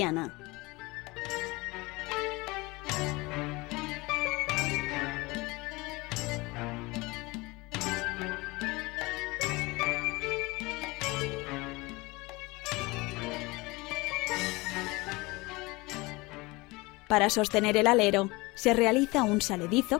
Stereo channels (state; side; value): quieter; right; 23.4 dB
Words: Para sostener el alero, se realiza un saledizo